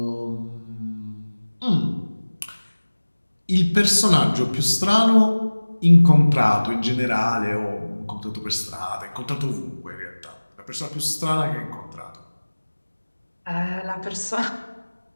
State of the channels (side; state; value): both; inverted; correlation -1.00